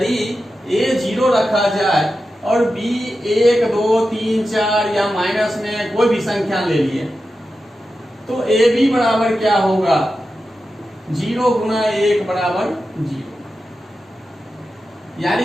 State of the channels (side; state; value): both; normal; correlation 0.91